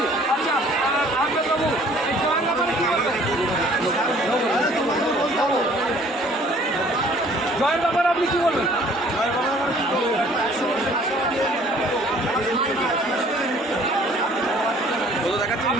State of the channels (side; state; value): both; normal; correlation 0.55